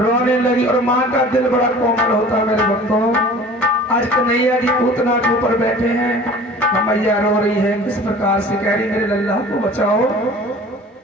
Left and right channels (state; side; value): normal; both; correlation 0.44